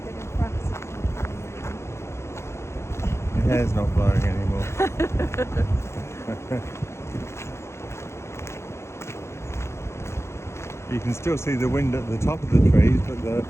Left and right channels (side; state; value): right; late; 0.13 ms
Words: did in France. Your hair's not blowing anymore. You can still see the wind at the top of the trees, but the